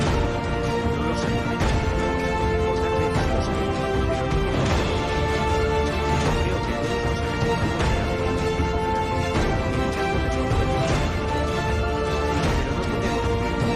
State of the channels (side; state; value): both; identical; correlation 1.00